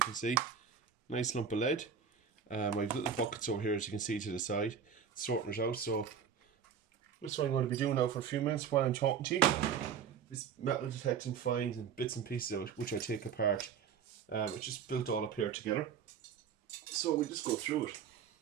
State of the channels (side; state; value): left; quieter; 7.3 dB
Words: can see, nice lump of lead. I have little buckets over here, as you can see to the side, sorting it out. So this is what I'm going to be doing now for a few minutes while I'm talking to you. This metal detecting finds and bits and pieces of it, which I take apart, which is built all up here together. So we just go through it